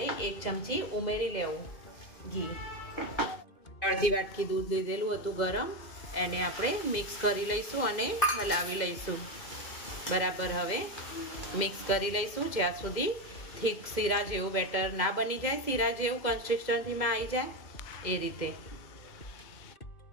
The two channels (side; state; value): right; late; 2.0 ms